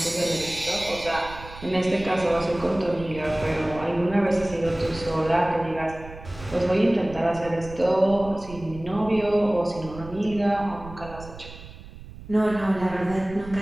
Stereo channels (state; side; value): noise; right; rumble, 15 dB below the sound